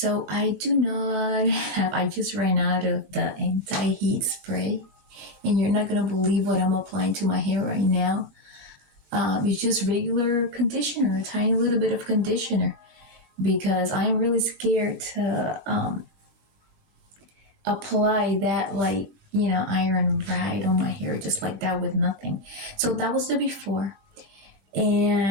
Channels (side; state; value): left; late; 19 ms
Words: I just ran out of the anti-heat spray, and you're not going to believe what I'm applying to my hair right now. It's just regular conditioner, a tiny little bit of conditioner, because I'm really scared to apply that iron right on my hair just like that with nothing. So that was the before,